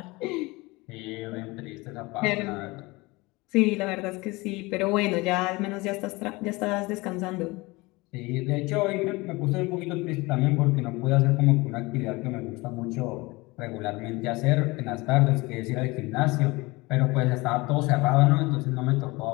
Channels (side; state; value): right; quieter; 23.2 dB